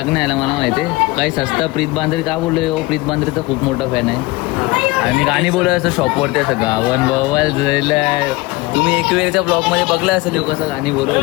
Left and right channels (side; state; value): right; quieter; 21.9 dB